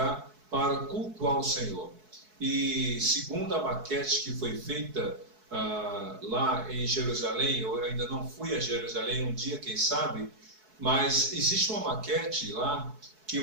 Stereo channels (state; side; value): late; left; 4.6 ms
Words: para cultuar o Senhor. E segundo a maquete que foi feita lá em Jerusalém, eu ainda não fui a Jerusalém, um dia quem sabe, mas existe uma maquete lá que